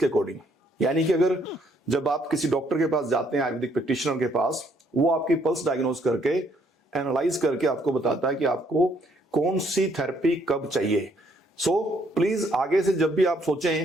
अकॉर्डिंग। यानी कि अगर जब आप किसी डॉक्टर के पास जाते हैं, आयुर्वेदिक प्रैक्टिशनर के पास, वो आपकी पल्स डायग्नोज करके एनालाइज करके आपको बताता है कि आपको कौन सी थेरेपी कब चाहिए। सो प्लीज आगे से जब भी आप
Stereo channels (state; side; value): normal; both; correlation 0.68